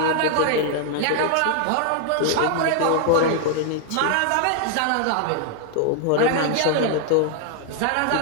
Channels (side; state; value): both; different; correlation 0.00